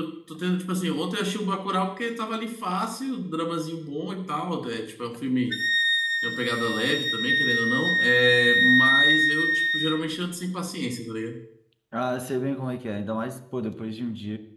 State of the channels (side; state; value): both; identical; correlation 1.00